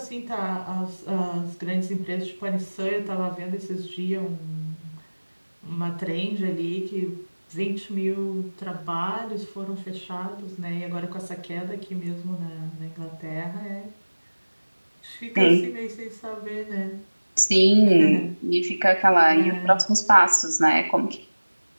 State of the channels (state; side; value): inverted; both; correlation -1.00